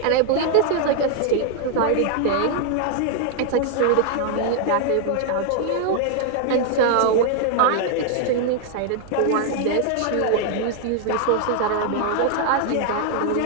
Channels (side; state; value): both; different; correlation 0.00